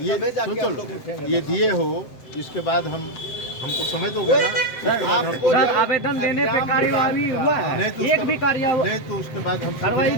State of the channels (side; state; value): right; late; 7.7 ms